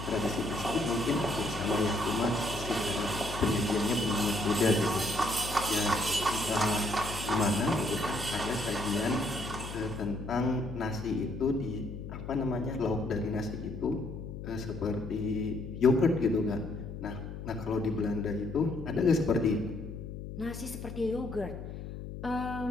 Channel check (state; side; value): noise; left; hum, 9 dB below the sound